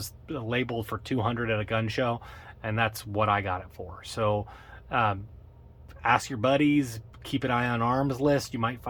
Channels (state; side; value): identical; both; correlation 1.00